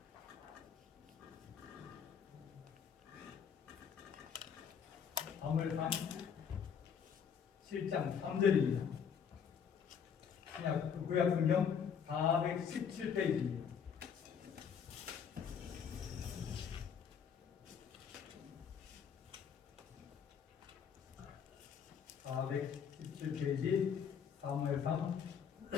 사무엘상 7장 3절입니다. 구약 성경 417페이지입니다. 사무엘상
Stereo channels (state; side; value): quieter; right; 7.3 dB